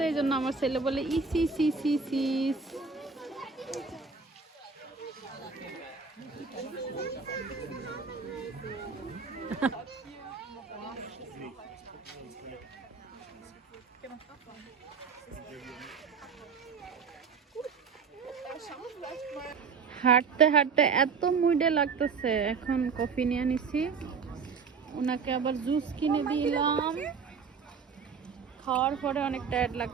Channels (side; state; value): left; quieter; 5.5 dB